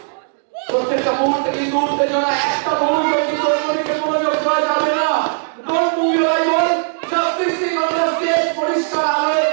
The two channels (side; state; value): left; silent; digital silence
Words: প্রত্যেকটা মুহূর্তে কিন্তু উত্তেজনা একটা মুহূর্তে কিন্তু অন্যদিকে মনোযোগ দেওয়া যাবে না don't move your eyeball just fixing on the stage পরিষ্কার আলোয়